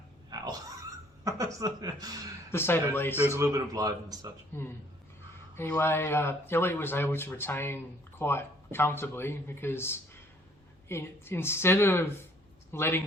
"Ow." To say the least. There was a little bit of blood and such. Anyway, Elliot was able to retain quite comfortably because instead of letting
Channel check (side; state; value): both; normal; correlation 0.61